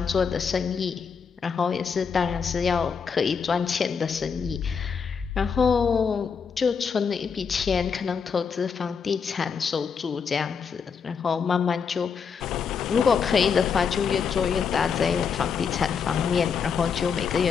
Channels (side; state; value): right; quieter; 6.2 dB